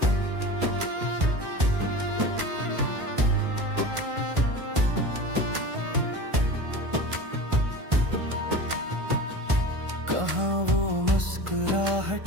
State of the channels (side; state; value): left; late; 1.5 ms